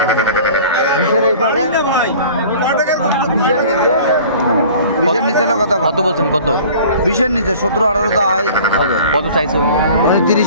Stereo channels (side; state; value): both; inverted; correlation -0.46